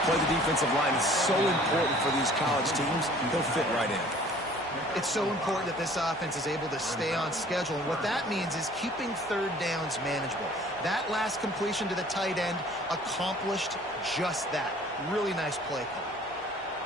play the defensive line, is so important for these college teams. They'll fit right in. It's so important that this offense is able to stay on schedule. And what that means is keeping 3rd downs manageable. That last completion to the tight end accomplished just that. Really nice play call.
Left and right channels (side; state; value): both; normal; correlation 0.52